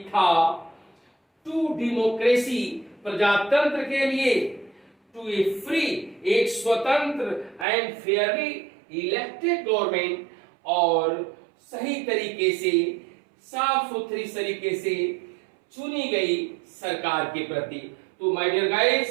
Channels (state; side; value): drops out; left; at 7.7 s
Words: था, टू डेमोक्रेसी, प्रजातंत्र के लिए, टू ए फ्री, एक स्वतंत्र एंड फेयरली इलेक्टेड गवर्नमेंट, और सही तरीके से, साफ सुथरी तरीके से चुनी गई सरकार के प्रति। तो माय डियर